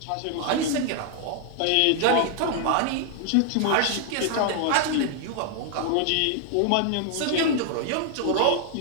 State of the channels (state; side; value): different; both; correlation 0.00